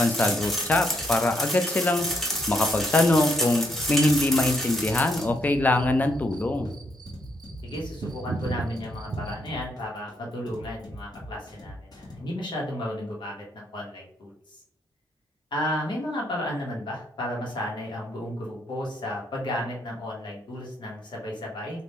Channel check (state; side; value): normal; both; correlation 0.74